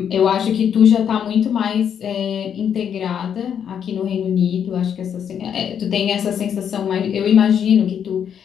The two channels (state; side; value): quieter; right; 8.4 dB